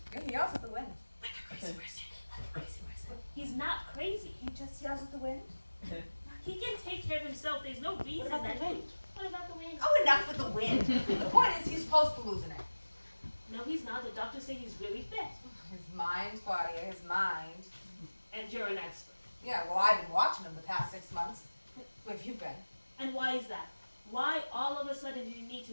Yeah, he yells at the wind. Like a crazy person. Like a crazy person. He's not crazy. He just yells at the wind. He can take care of himself. There's no reason What about that. the wind? What about the wind? Oh, enough with the wind. The point is, he's close to losing it. No, he's not. The doctors say he's really fit. His mind, Claudia, his mind. And you're an expert. Yeah, well, I've been watching him the past 6 months. Who have you been? And why is that? Why all of a sudden do you need to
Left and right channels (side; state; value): both; inverted; correlation -1.00